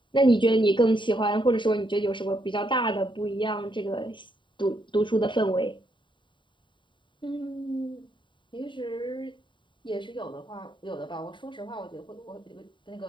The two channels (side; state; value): right; late; 0.23 ms